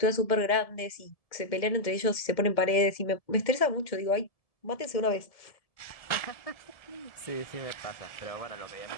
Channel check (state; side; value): late; right; 1.7 ms